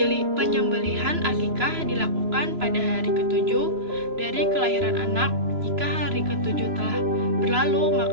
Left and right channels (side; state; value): left; late; 3.0 ms